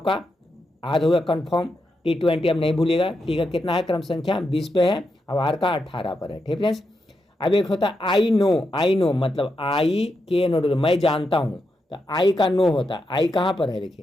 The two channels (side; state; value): both; normal; correlation 0.85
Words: याद होगा कन्फर्म। T20 अब नहीं भूलिएगा, टी का कितना है, क्रम संख्या 20 पे है, अब आर का 18 पर है, ठीक फ्रेंड्स। अब एक होता है आई नो मतलब आई के नो, मैं जानता हूँ, तो आई का नो होता है, आई कहाँ पर है,